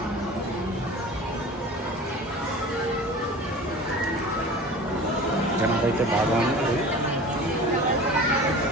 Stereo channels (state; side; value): normal; both; correlation 0.38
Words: జనాలు అయితే బాగా ఉంది.